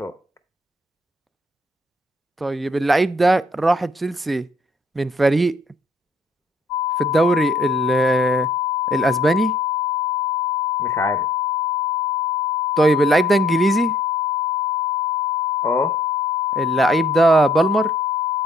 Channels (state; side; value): normal; both; correlation 0.62